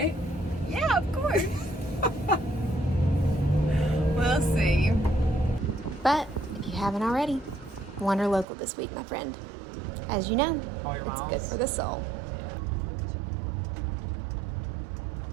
Yeah, of course. We'll see. But if you haven't already, Wanderlocal this week, my friend. As you know, All your it's miles. good for the soul.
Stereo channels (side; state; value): left; drops out; at 8.5 s